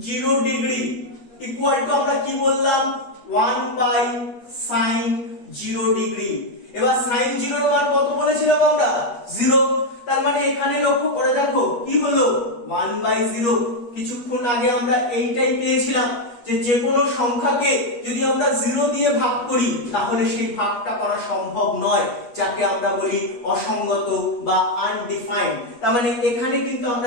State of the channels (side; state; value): right; late; 8.4 ms